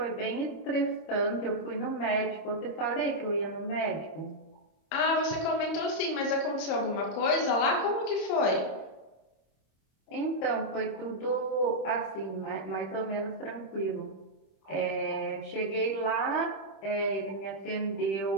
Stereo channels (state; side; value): late; right; 26 ms